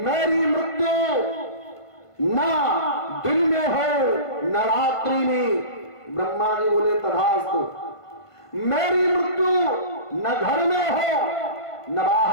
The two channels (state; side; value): late; right; 1.5 ms